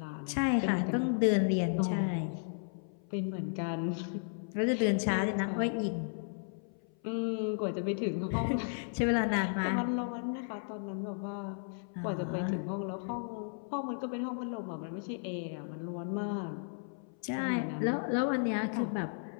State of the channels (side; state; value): right; silent; 55 dB below the other